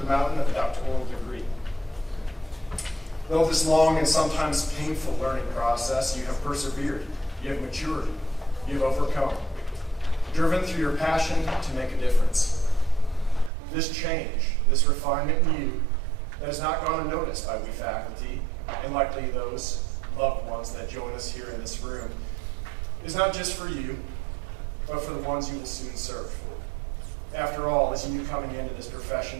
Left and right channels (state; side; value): drops out; left; at 13.5 s